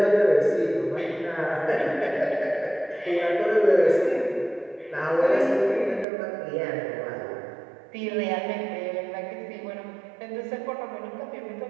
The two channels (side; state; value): left; drops out; at 6.1 s